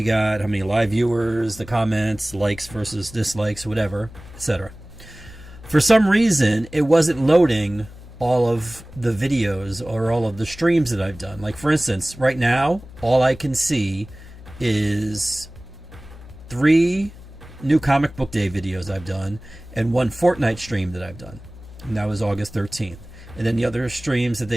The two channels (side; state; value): left; noise; hum, 17 dB below the sound